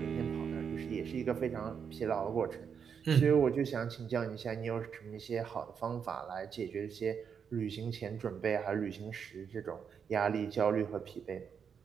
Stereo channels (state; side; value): quieter; left; 7.0 dB